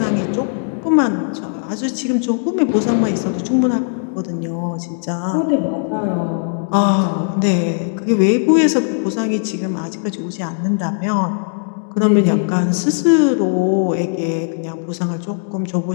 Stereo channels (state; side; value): silent; right; digital silence